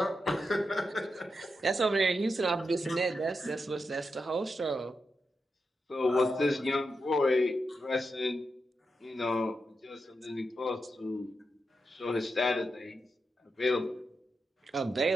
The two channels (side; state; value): both; normal; correlation 0.87